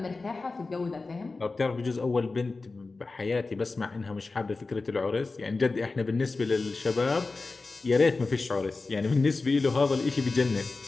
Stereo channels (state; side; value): quieter; right; 3.7 dB